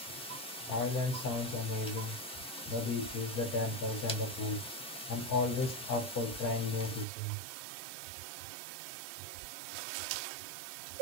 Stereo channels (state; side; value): drops out; left; at 7.1 s